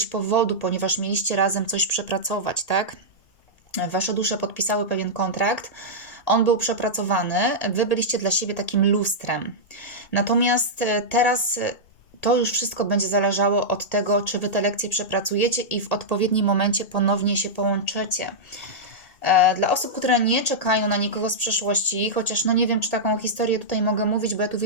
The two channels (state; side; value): late; right; 1.8 ms